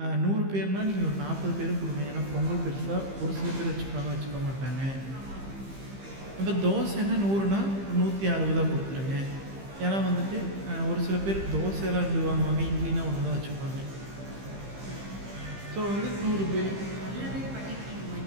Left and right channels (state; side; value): late; left; 15 ms